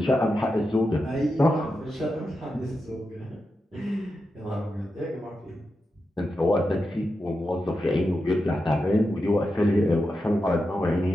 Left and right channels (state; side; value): normal; both; correlation 0.89